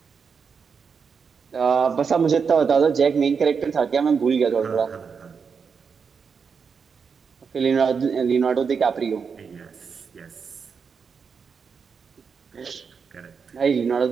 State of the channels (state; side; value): quieter; left; 5.9 dB